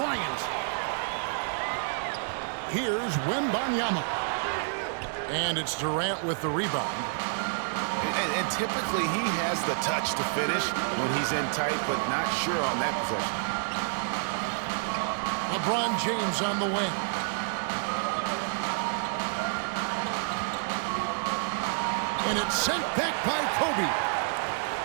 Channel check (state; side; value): silent; left; digital silence